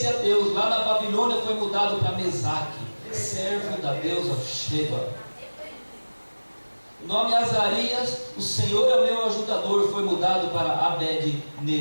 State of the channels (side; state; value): both; inverted; correlation -1.00